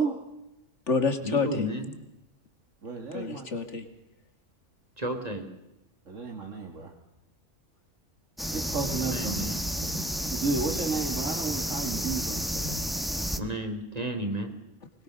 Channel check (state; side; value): normal; both; correlation 0.50